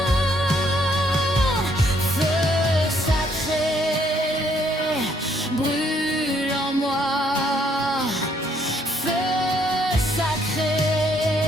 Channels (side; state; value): both; normal; correlation 0.68